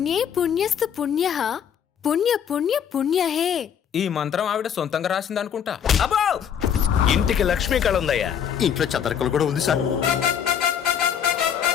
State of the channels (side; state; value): right; quieter; 8.4 dB